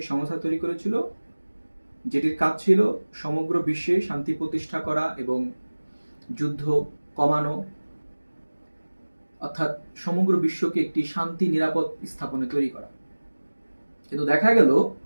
সংস্থা তৈরি করেছিল, যেটির কাজ ছিল সমগ্র বিশ্বে শান্তি প্রতিষ্ঠা করা এবং যুদ্ধ কমানো, অর্থাৎ সমগ্র বিশ্বকে একটি শান্তি নিরাপদ স্থাপনে তৈরি করা। কিন্তু দেখা গেল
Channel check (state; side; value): inverted; both; correlation -1.00